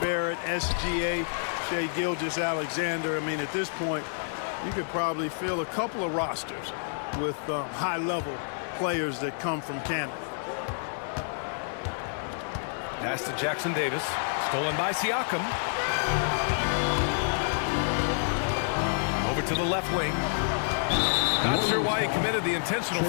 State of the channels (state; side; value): silent; right; 59 dB below the other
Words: SGA, Shai Gilgeous-Alexander. I mean, at this point, you could probably fill a couple of rosters with high-level players that come from Canada. Pass to Jackson Davis. Stolen by Siakam. Over to the left wing. Not sure why he committed the intentional